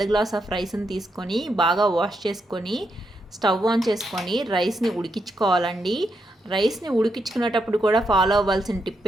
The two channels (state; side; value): normal; both; correlation 0.81